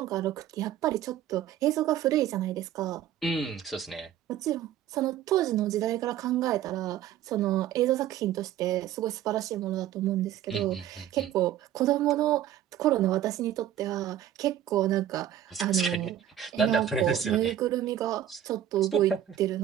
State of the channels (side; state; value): left; quieter; 11.1 dB